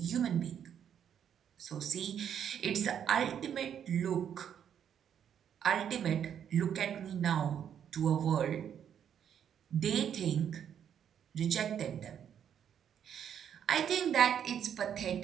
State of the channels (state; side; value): quieter; left; 8.9 dB